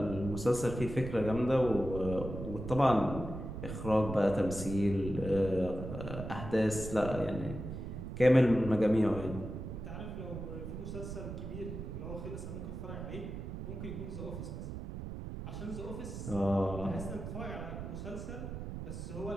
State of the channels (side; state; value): right; noise; rumble, 7 dB below the sound